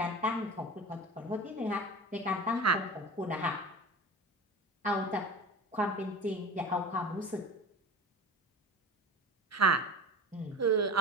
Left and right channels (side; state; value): both; normal; correlation 0.33